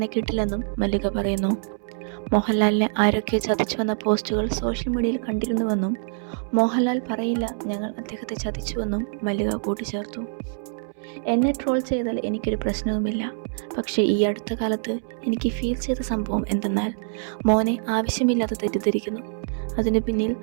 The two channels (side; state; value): left; silent; 62 dB below the other